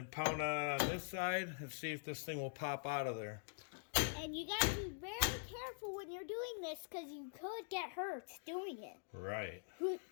pound on it on this side, and see if this thing will pop out of there. And you gotta be very careful when you're doing this, because you could get hurt doing it. Right.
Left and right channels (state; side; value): silent; right; digital silence